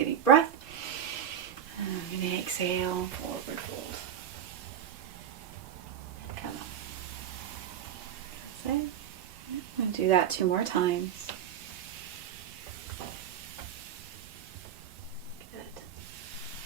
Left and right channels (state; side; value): quieter; left; 9.2 dB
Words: deep breath. And I'm going to exhale, forward fold. And come up. That's it. I'm going to do that 2 more times. Good.